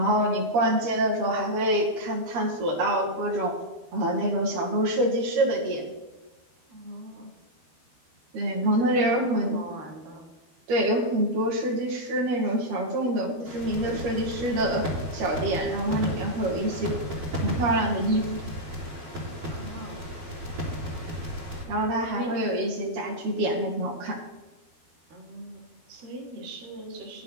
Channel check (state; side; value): late; left; 12 ms